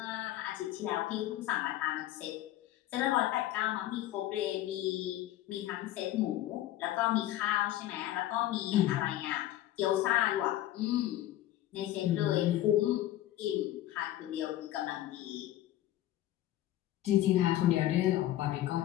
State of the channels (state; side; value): quieter; right; 13.9 dB